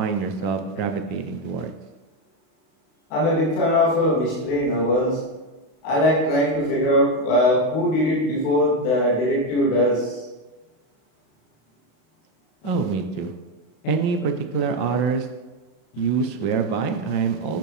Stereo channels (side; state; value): right; late; 32 ms